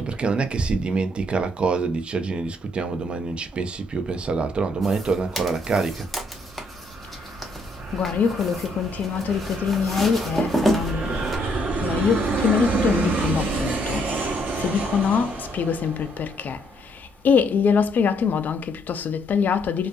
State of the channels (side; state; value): both; normal; correlation 0.71